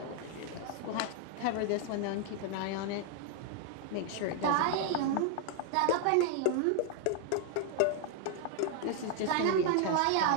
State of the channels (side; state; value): both; different; correlation 0.00